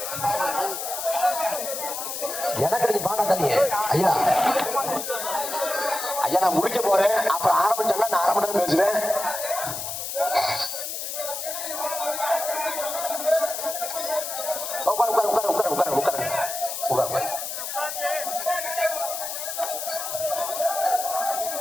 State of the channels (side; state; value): left; noise; hiss, 5 dB below the sound